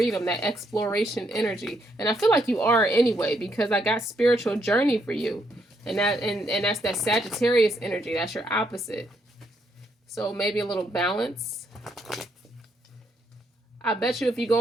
that exploration energy. And I feel like you are anyway, because I got spiritual journey for you. And that's that Sagittarius energy. That's your opposite. So maybe a little balance. I bet you if you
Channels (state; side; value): normal; both; correlation 0.75